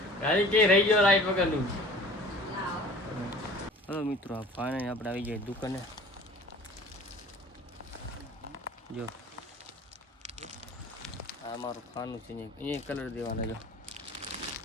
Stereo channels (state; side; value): normal; both; correlation 0.45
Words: ગાડી કે રહી ગયો લાઈટ વગરનું. હલો મિત્રો ફાઇનલી આપણે આવી જાય દુકાને. જો આ મારું ખાનું છે અહીંયા કલર દેવાના. જો